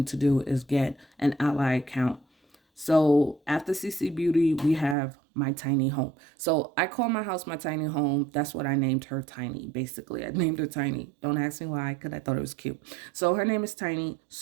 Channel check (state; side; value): drops out; left; at 5.0 s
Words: to do, is get an Ally account. So after CC Beauty, we have my tiny home. So I call my house my tiny home. That's what I named her, Tiny. Basically, I named her Tiny. Don't ask me why, because I thought it was cute. So her name is Tiny.